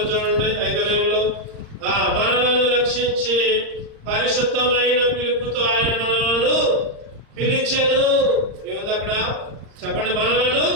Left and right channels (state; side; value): late; left; 39 ms